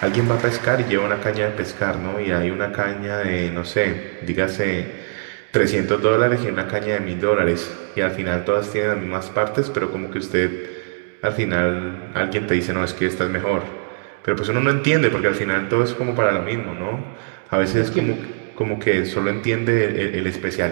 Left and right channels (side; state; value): left; silent; digital silence